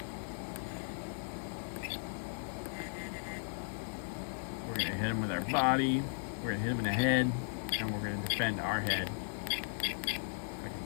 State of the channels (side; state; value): right; silent; 53 dB below the other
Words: We're going to hit him with our body. We're going to hit him in the head. And we're going to defend our head. I